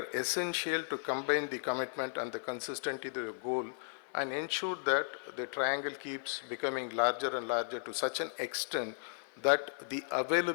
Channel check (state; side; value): silent; right; 54 dB below the other